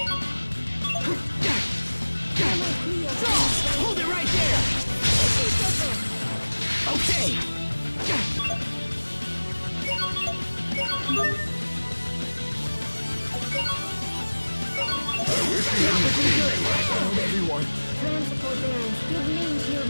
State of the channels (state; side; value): inverted; both; correlation -1.00